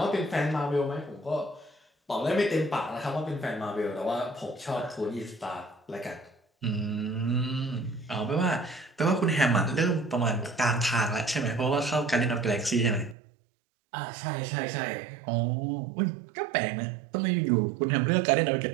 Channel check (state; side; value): drops out; left; at 13.2 s